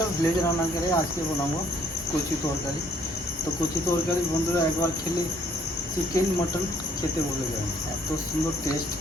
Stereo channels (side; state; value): both; normal; correlation 0.64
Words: ভিলেজ রান্নাঘরে আজকে বানাবো কচু তরকারি। তো কচু তরকারি বন্ধুরা একবার খেলে চিকেন মটন খেতে বলে যাবেন, এত সুন্দর টেস্ট